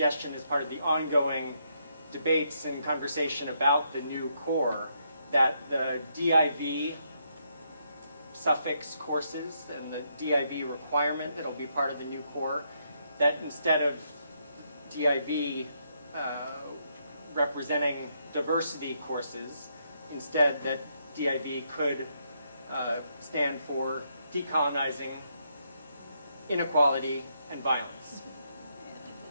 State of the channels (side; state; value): both; inverted; correlation -0.77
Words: as part of the ongoing debates and conversation about the new core, that the DIV suffix courses and the DIV requirement that'll be part of the new core, that instead of DIV representing diversity courses, instead that DIV could stand for decolonizing inequality and violence.